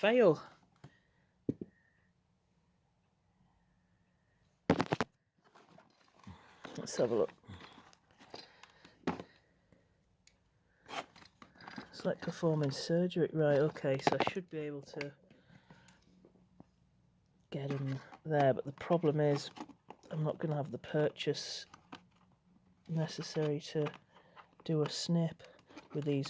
Let's have a look. It's like performing surgery. Right, okay, so I should be able to get him there, but the problem is I'm not going to have the purchase necessary to do a snip with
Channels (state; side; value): identical; both; correlation 1.00